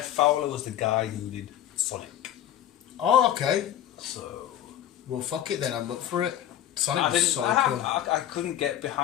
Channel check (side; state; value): right; quieter; 11.6 dB